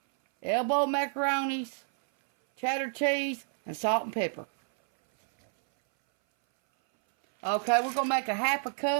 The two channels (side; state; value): left; silent; 59 dB below the other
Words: elbow macaronis, cheddar cheese, and salt and pepper. Okay, we're going to make a half a